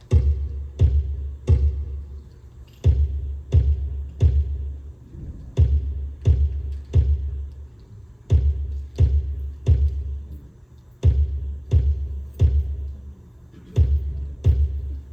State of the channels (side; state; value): both; identical; correlation 1.00